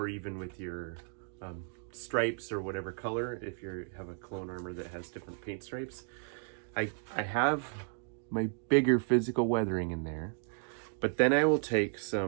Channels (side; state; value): left; silent; 55 dB below the other